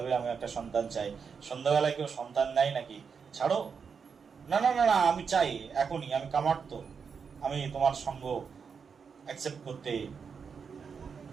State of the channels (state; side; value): quieter; left; 6.1 dB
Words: আমি একটা সন্তান চাই। সন্ধ্যাবেলায় কেউ সন্তান নেয় নাকি? ছাড়ো। না না না না, আমি চাই এখনই, আমি কামার্ত, আমি তোমার সঙ্গ অ্যাকসেপ্ট করতে